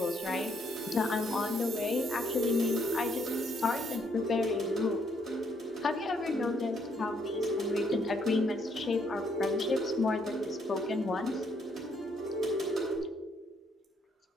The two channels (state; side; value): normal; both; correlation 0.71